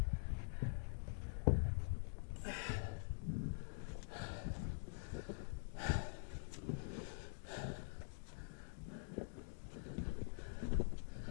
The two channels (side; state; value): right; silent; digital silence